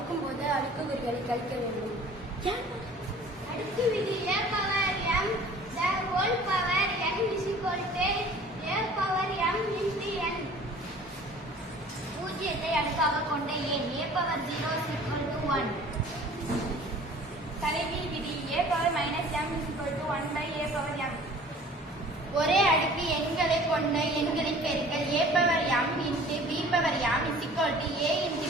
போது அடுக்குக்குறிகளை கழிக்க வேண்டும். அடுக்கு விதி a power m the whole power n is equal to a power m into n. பூஜ்ஜியத்தை அடுக்காக கொண்ட எண் a power 0 is equal to 1. தலைகீழ் விதி a power minus m is equal to 1 by a power m. ஒரே அடுக்கு எண்களை கொண்ட எண்களின் பெருக்கல் a power m into b power m is equal to a into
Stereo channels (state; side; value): normal; both; correlation 0.48